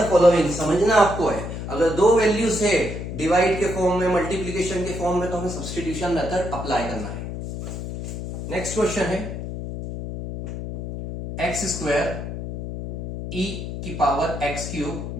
फॉलोइंग। समझना आपको है, अगर दो वैल्यूज है डिवाइड के फॉर्म में, मल्टीप्लीकेशन के फॉर्म में, तो हमें सब्स्टिट्यूशन मेथड अप्लाई करना है। नेक्स्ट क्वेश्चन है एक्स स्क्वायर ई की power x cube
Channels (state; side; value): noise; left; hum, 7 dB below the sound